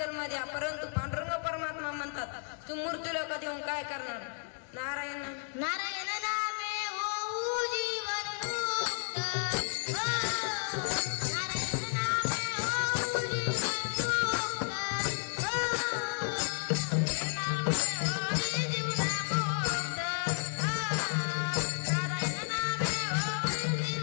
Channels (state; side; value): silent; right; 56 dB below the other